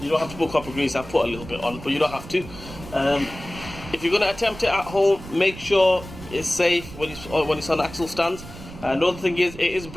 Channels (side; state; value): right; noise; rumble, 14 dB below the sound